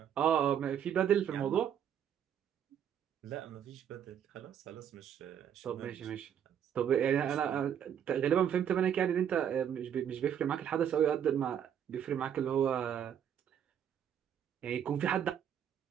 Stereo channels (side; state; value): left; quieter; 9.1 dB